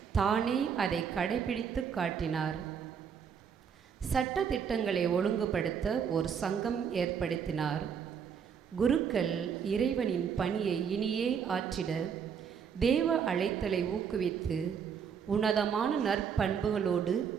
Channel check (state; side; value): quieter; left; 7.2 dB